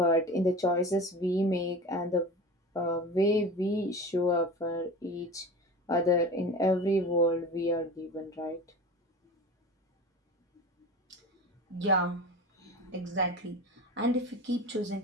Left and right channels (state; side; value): normal; both; correlation 0.33